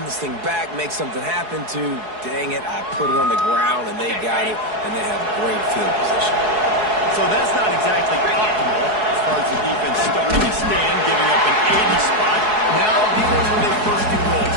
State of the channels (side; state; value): left; late; 4.7 ms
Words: this thing back, make something happen to, dang it, I put it on the ground, and they got it, and they have great field position. So that's not exactly optimal as far as the defense starting to stand, giving up an 80 spot. Now dealing with a 1st and goal.